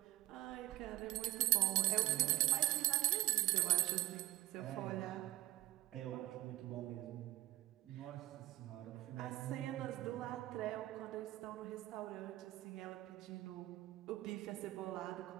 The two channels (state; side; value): quieter; left; 17.1 dB